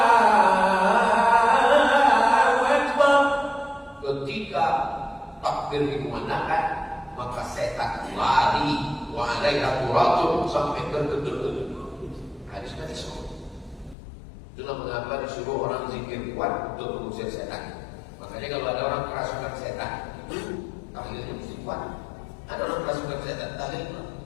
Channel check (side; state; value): right; drops out; at 14.0 s